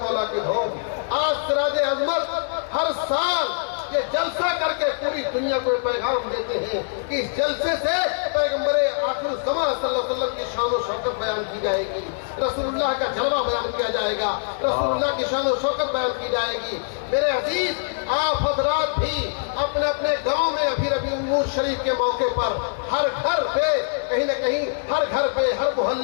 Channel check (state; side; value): silent; right; digital silence